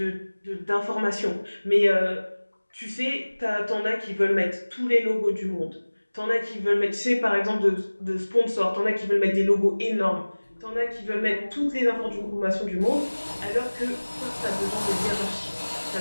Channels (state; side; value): inverted; both; correlation -1.00